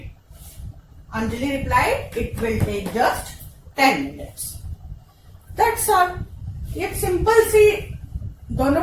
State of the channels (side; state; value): both; identical; correlation 1.00